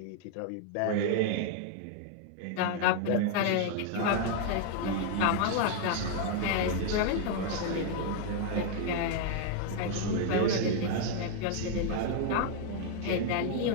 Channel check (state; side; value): different; both; correlation 0.00